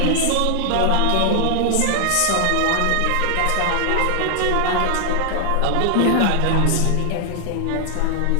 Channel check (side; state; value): both; different; correlation 0.00